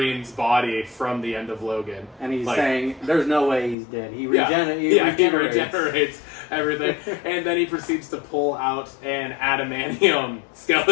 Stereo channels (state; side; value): drops out; right; at 3.8 s